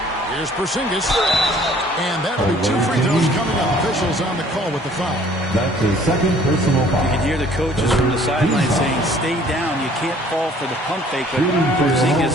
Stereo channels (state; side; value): normal; both; correlation 0.56